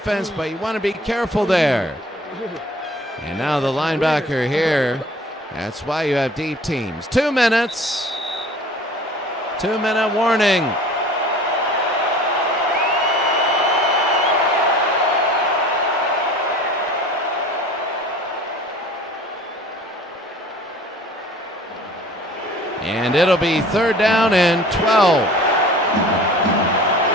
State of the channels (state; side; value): normal; both; correlation 0.46